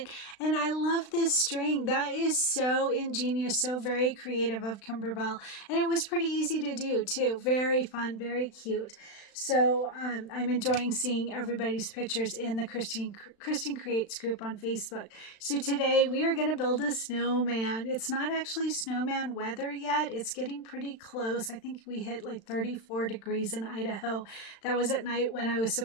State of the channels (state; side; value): late; right; 36 ms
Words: And I love this string. That is so ingenious, so very creative of Kimberbell. And it was pretty easy to do too. Very fun, very cute. So I'm enjoying seeing everybody's pictures in the Cristin Creates group on Facebook. So today we are going to build a snowman. It's not actually snowman weather yet. It's getting pretty close. I think we hit like 34 degrees in Idaho. That was at night when I was